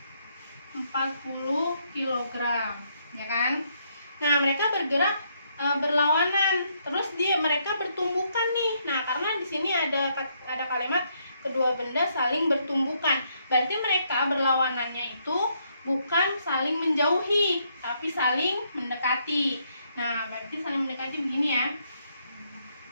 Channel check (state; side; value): inverted; both; correlation -0.73